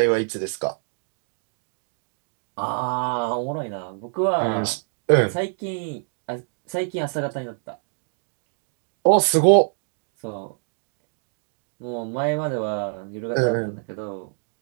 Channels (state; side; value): silent; left; digital silence